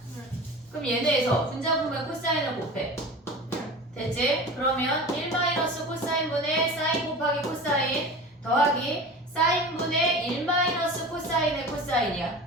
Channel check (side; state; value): both; normal; correlation 0.34